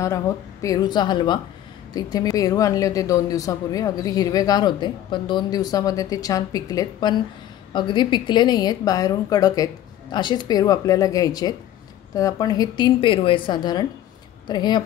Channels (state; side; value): quieter; right; 12.2 dB